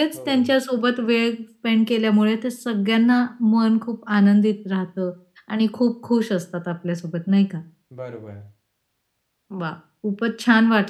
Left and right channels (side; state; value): both; identical; correlation 1.00